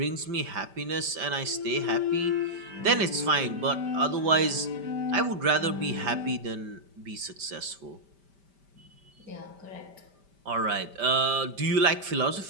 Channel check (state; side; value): late; left; 5.1 ms